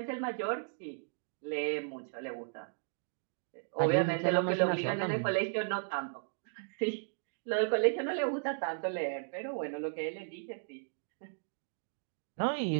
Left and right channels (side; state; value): left; silent; digital silence